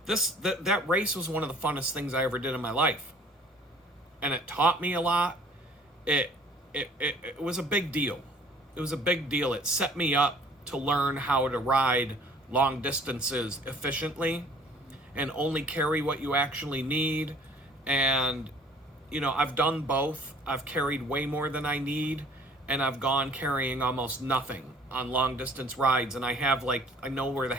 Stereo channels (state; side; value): normal; both; correlation 0.54